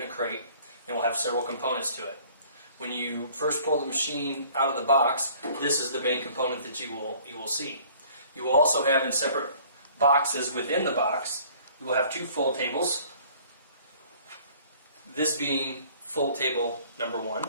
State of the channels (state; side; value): inverted; both; correlation -0.53